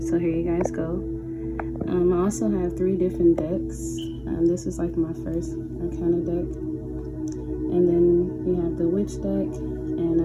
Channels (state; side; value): identical; both; correlation 1.00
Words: so here you guys go. I also have 3 different decks. This is like my first Arcana deck. And then we have the Witch deck, and